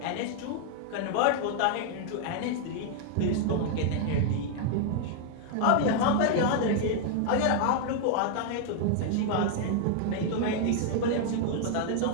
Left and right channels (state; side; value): different; both; correlation 0.00